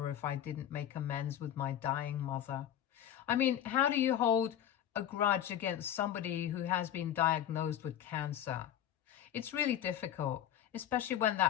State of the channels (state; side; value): quieter; right; 10.7 dB